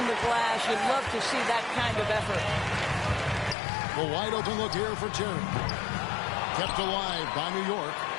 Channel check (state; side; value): drops out; right; at 3.6 s